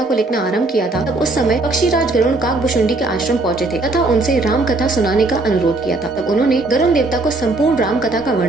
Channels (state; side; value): quieter; left; 3.1 dB